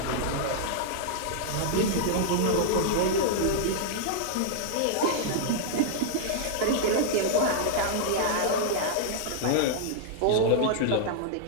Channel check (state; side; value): different; both; correlation -0.01